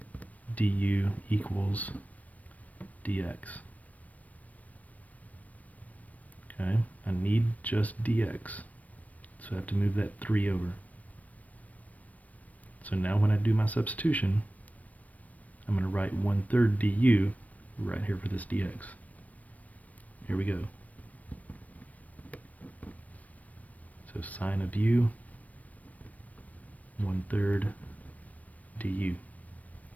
du equals dx. Okay, I need just dx. So I have to move that 3 over. So now when I do my substitution, I'm going to write 1/3 du right here for this dx. Here we go. So sine of u, 1/3 du.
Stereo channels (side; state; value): right; late; 0.071 ms